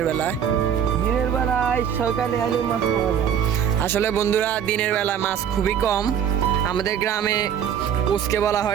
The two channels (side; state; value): left; quieter; 8.7 dB